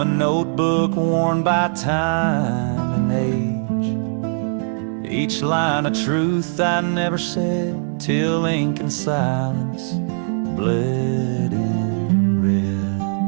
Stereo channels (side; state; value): left; silent; 62 dB below the other